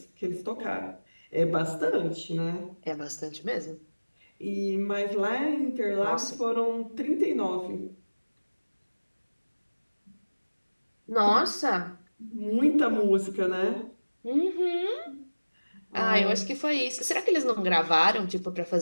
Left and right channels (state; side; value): inverted; both; correlation -1.00